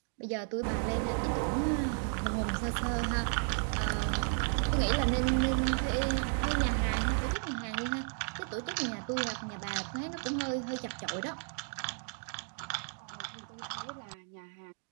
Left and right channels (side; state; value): left; silent; 55 dB below the other